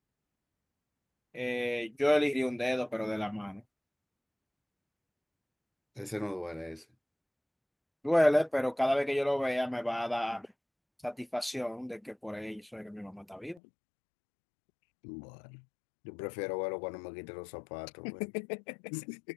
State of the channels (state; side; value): drops out; right; at 13.6 s